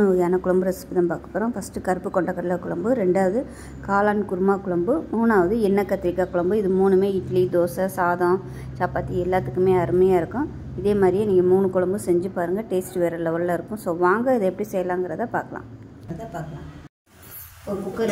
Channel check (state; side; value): identical; both; correlation 1.00